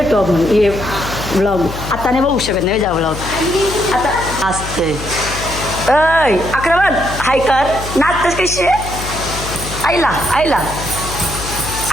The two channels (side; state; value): left; noise; hum, 9 dB below the sound